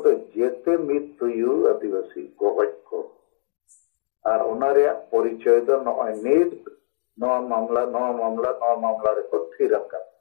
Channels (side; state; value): right; silent; digital silence